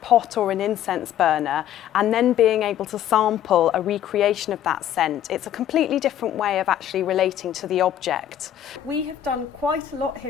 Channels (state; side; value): quieter; right; 10.8 dB